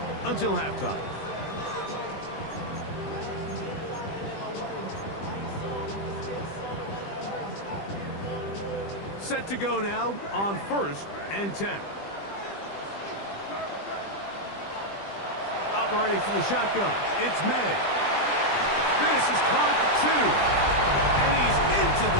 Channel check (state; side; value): late; right; 20 ms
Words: until halftime. Set to go now on 1st and 10. Operating from the shotgun, it's May. This is caught for 2. And he's into